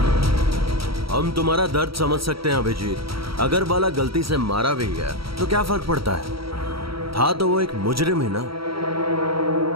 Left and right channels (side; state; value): left; late; 0.75 ms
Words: हम तुम्हारा दर्द समझ सकते हैं अभिजीत। अगर बाला गलती से मारा भी गया तो क्या फर्क पड़ता है, था तो वो एक मुजरिम ही ना।